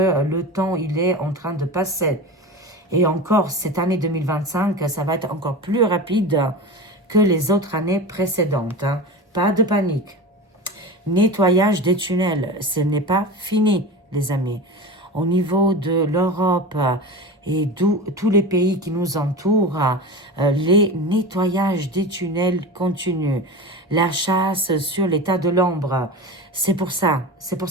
le temps, il est en train de passer. Et encore, cette année 2025, ça va être encore plus rapide que les autres années précédentes, hein. Pas de panique. Nettoyage des tunnels, ce n'est pas fini, les amis. Au niveau de l'Europe et tous les pays qui nous entourent, les nettoyages des tunnels continuent. La chasse sur l'état de l'ombre, c'est pour ça,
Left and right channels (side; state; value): both; normal; correlation 0.28